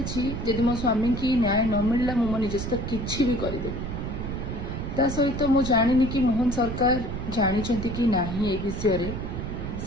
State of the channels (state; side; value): noise; right; rumble, 5 dB below the sound